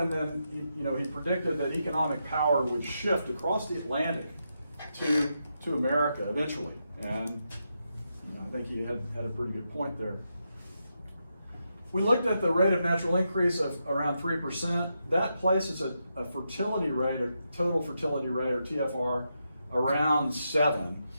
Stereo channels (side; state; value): both; inverted; correlation -0.84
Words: then, he predicted that economic power would shift across the Atlantic to America eventually. And I think he had a pretty good point there. We looked at the rate of natural increase of around 3%. That places a fertility rate, a total fertility rate, or TFR, around 7.